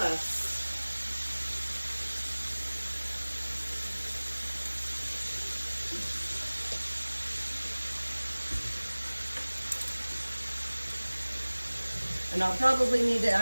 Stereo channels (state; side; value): inverted; both; correlation -1.00